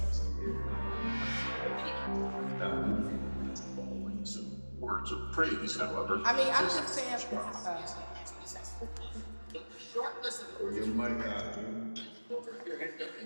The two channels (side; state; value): both; inverted; correlation -1.00